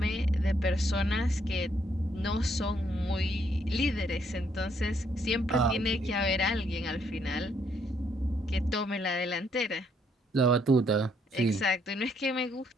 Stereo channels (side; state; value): both; normal; correlation 0.71